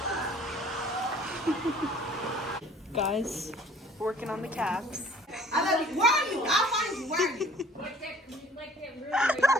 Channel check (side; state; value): both; normal; correlation 0.53